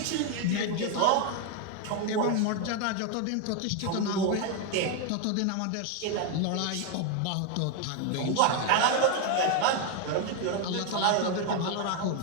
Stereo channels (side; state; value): both; different; correlation 0.01